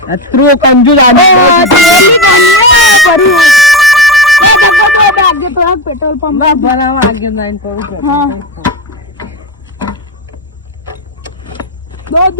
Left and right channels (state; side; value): normal; both; correlation 0.15